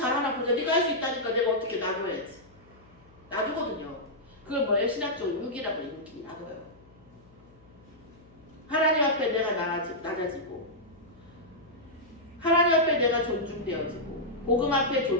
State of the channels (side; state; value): left; noise; hum, 27 dB below the sound